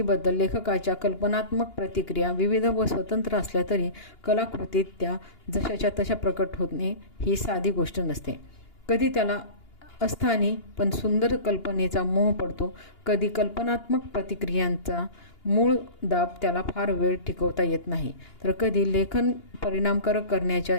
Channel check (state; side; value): late; right; 2.8 ms